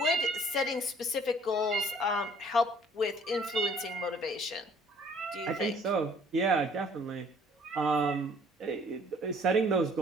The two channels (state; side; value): normal; both; correlation 0.57